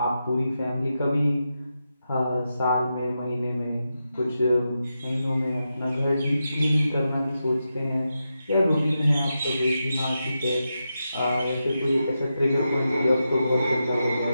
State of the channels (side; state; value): both; inverted; correlation -0.88